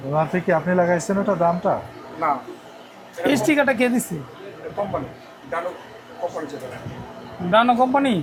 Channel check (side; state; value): both; identical; correlation 1.00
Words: ওনার থেকে আপনি লাগাইছেন ওটা দামটা? না, এই স্টিকারটা কে দিচ্ছে? কোম্পানি ডানো কোম্পানি যেটা। ডানো কোম্পানি?